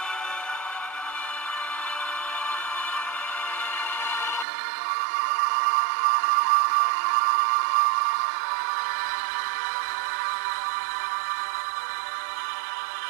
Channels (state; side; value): drops out; left; at 4.5 s